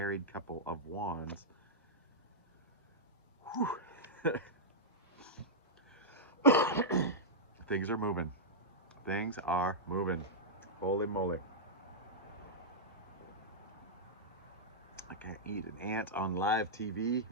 couple of Wands. Things are moving. Things are moving. Holy moly. I can't eat an ant on live TV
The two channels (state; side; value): normal; both; correlation -0.10